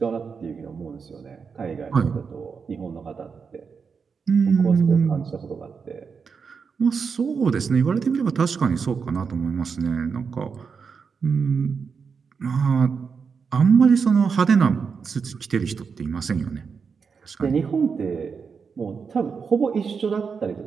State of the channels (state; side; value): quieter; left; 5.7 dB